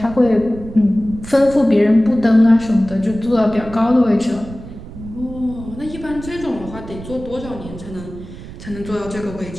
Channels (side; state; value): right; noise; rumble, 13 dB below the sound